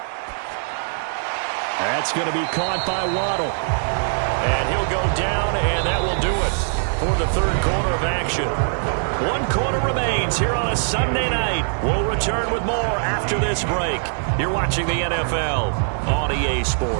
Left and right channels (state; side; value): silent; left; digital silence